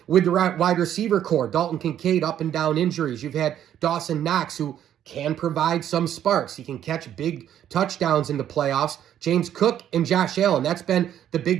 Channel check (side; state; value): left; quieter; 10.6 dB